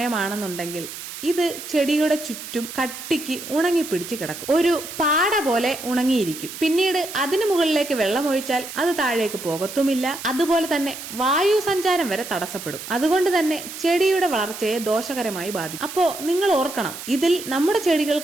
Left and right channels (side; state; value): right; noise; hiss, 11 dB below the sound